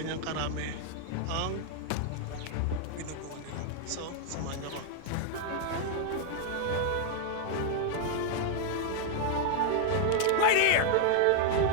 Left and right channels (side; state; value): both; different; correlation 0.00